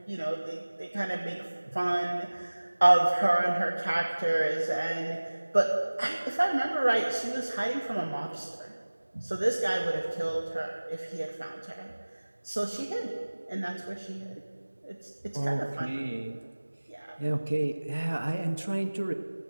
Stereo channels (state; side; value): inverted; both; correlation -1.00